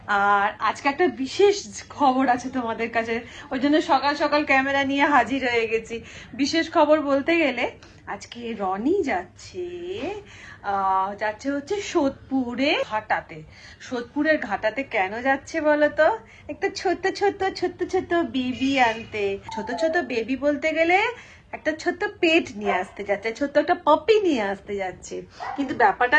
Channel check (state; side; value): identical; both; correlation 1.00